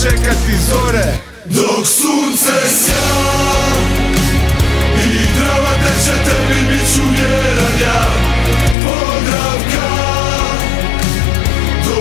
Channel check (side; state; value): right; drops out; at 8.8 s